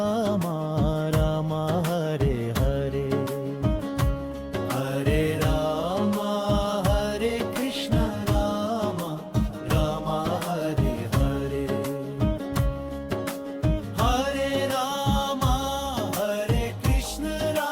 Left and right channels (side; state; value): both; identical; correlation 1.00